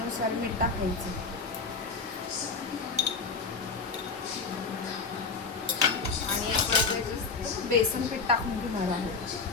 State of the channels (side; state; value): right; quieter; 4.6 dB